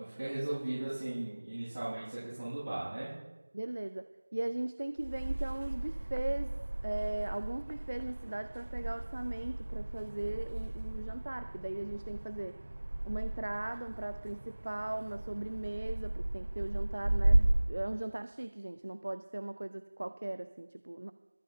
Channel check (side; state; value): both; inverted; correlation -1.00